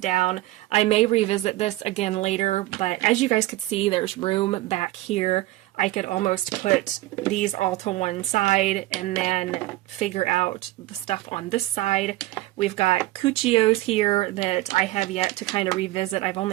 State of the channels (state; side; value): quieter; left; 17.5 dB